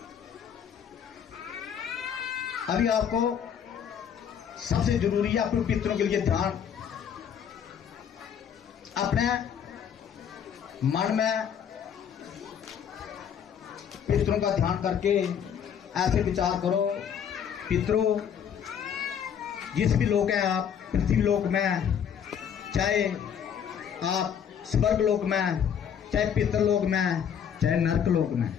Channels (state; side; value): quieter; right; 8.2 dB